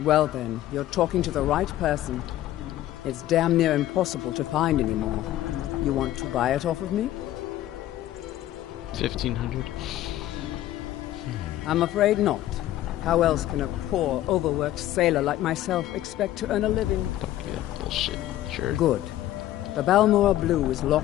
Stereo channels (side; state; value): right; quieter; 13.8 dB